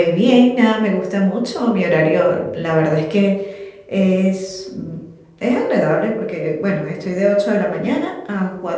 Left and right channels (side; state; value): both; identical; correlation 1.00